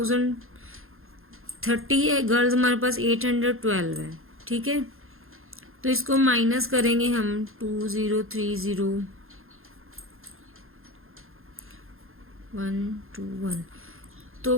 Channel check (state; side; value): late; left; 0.61 ms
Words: है, गर्ल्स हमारे पास 812 है। ठीक है, तो इसको माइनस करेंगे हम, 2030 121, तो